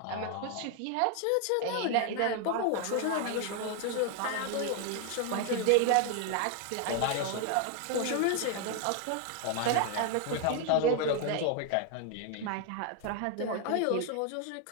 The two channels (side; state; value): both; different; correlation 0.00